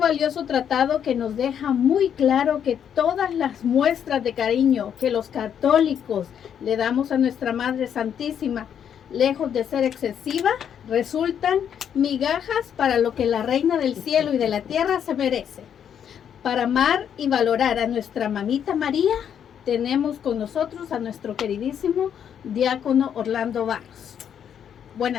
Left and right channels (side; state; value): right; quieter; 8.6 dB